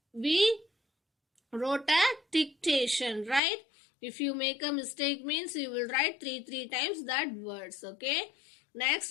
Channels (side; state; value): right; drops out; at 3.4 s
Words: we wrote a dictation, right? If you make a mistake means you will write three times that words. Okay, next,